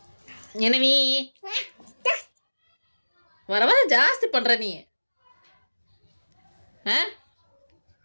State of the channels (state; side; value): inverted; both; correlation -1.00